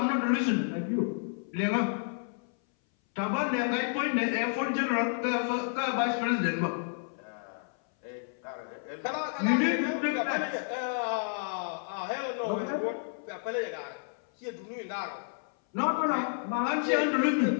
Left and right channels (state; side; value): silent; right; 57 dB below the other